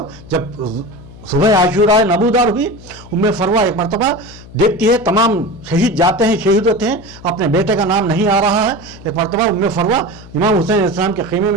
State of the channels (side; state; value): left; noise; hum, 19 dB below the sound